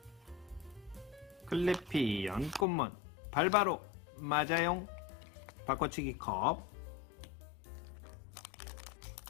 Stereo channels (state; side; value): drops out; right; at 2.7 s